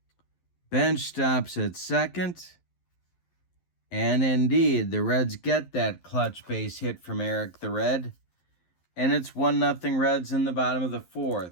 Bench stops at second. And indeed, the Reds get that clutch base hit from Eric the Red. And it's 1-0 Reds in the bottom of the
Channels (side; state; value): right; late; 11 ms